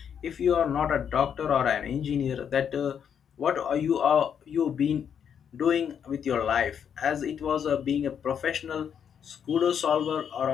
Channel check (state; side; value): quieter; right; 8.0 dB